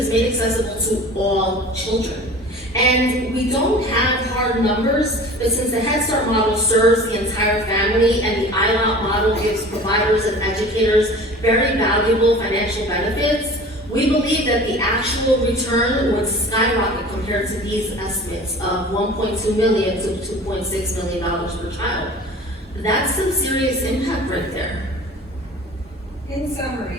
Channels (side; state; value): both; normal; correlation 0.41